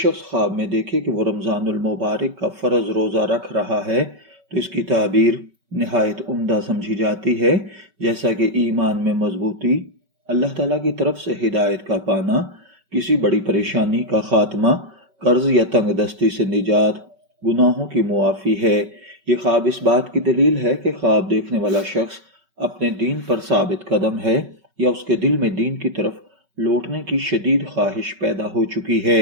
خواب میں دیکھے کہ وہ رمضان المبارک کا فرض روزہ رکھ رہا ہے تو اس کی تعبیر نہایت عمدہ سمجھی جاتی ہے، جیسا کہ ایمان میں مضبوطی، اللہ تعالیٰ کی طرف سے ہدایت کا پانا، کسی بڑی پریشانی کا خاتمہ، قرض یا تنگ دستی سے نجات، گناہوں کی معافی ہے۔ یہ خواب اس بات کی دلیل ہے کہ خواب دیکھنے والا شخص اپنے دین پر ثابت قدم ہے یا اس کے دل میں دین کی طرف لوٹنے کی شدید خواہش پیدا ہو چکی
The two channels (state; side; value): late; left; 5.3 ms